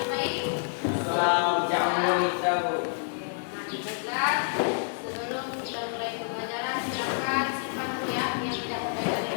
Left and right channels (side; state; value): right; silent; digital silence